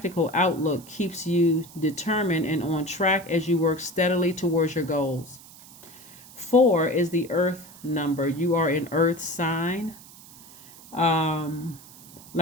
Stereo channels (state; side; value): noise; right; hiss, 20 dB below the sound